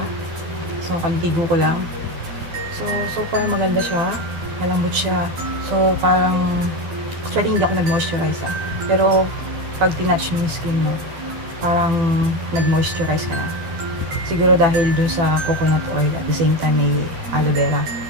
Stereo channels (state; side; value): late; left; 12 ms